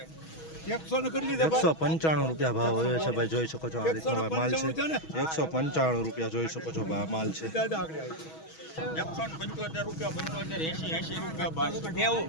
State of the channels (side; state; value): right; late; 6.2 ms